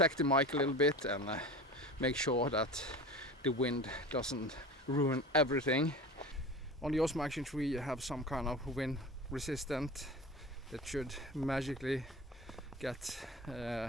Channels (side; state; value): both; normal; correlation 0.34